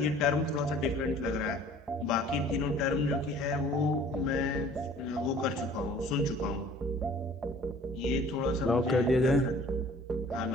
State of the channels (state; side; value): normal; both; correlation 0.51